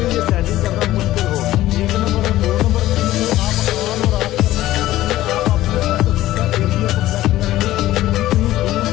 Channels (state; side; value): quieter; right; 15.1 dB